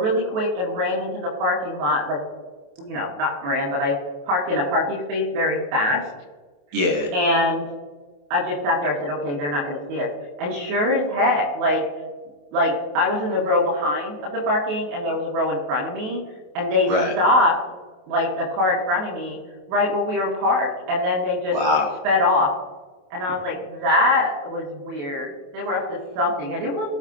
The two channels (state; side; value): late; left; 28 ms